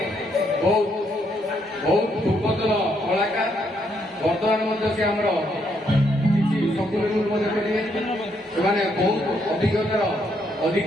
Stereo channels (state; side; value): normal; both; correlation 0.74